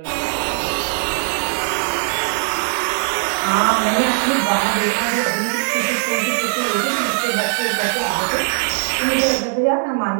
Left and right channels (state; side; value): silent; left; digital silence